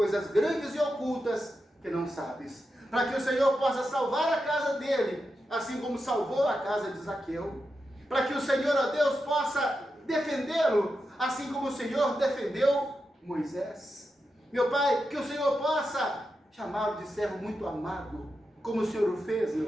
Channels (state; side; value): normal; both; correlation 0.88